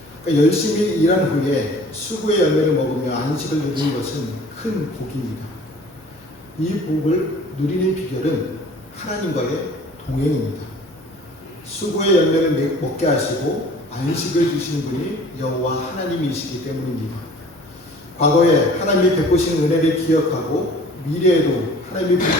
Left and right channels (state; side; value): normal; both; correlation 0.48